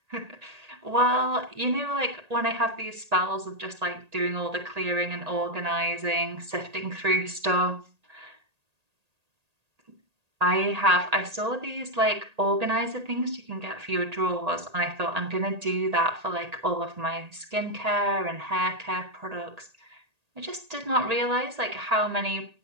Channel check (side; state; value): left; late; 1.8 ms